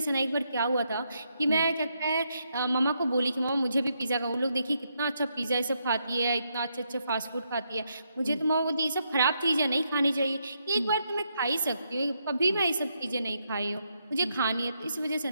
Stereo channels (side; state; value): both; inverted; correlation -0.79